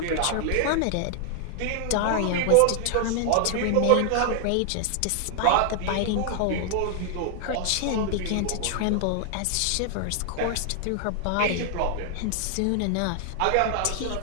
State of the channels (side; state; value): both; different; correlation 0.00